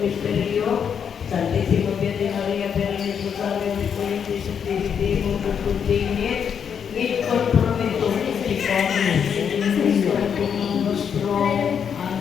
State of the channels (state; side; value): quieter; right; 7.5 dB